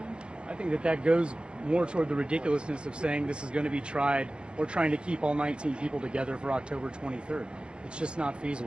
I think that goes more toward the ridiculousness of saying this is going to be tried or trying to keep all 19 people together for October 23rd. It's just not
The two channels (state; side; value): late; left; 0.055 ms